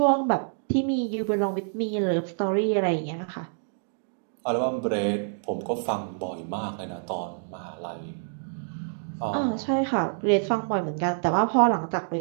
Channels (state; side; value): silent; left; digital silence